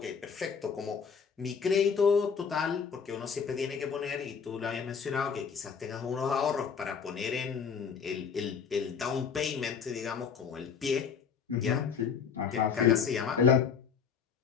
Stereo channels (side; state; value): right; quieter; 6.5 dB